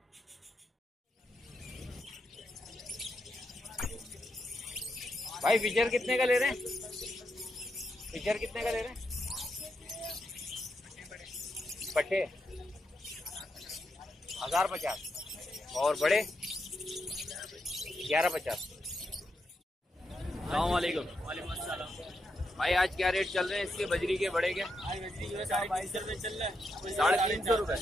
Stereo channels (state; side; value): normal; both; correlation 0.83